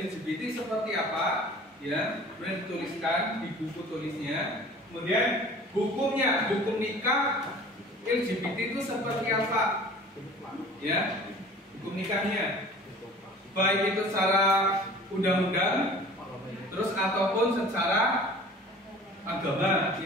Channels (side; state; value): both; normal; correlation 0.45